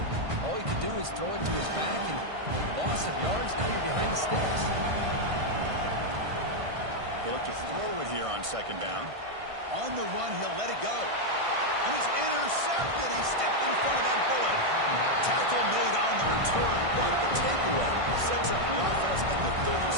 All you can do is throw it to his back, and loss of yards, now you're behind the sticks. He'll look to throw it here on second down. On the run, he'll let it go. And he's intercepted. He stepped in front of that bullet. Tackle made on the return, but the takeaway sets up the offense at the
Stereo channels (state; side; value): late; left; 1.6 ms